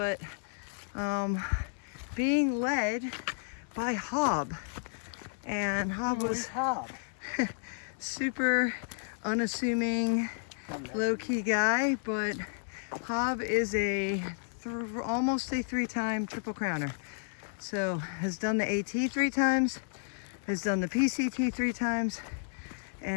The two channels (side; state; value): right; silent; digital silence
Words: being led by Hob. And Hob was Hob? super unassuming, low-key guy, but Hob is almost a 3-time Triple Crowner. So has done the AT 3 times, has done the PCT 3 times,